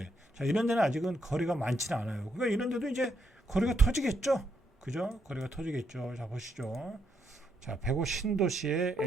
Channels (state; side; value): normal; both; correlation 0.78